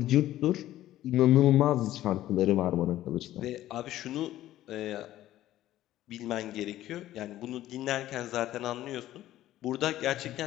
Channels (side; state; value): right; quieter; 14.0 dB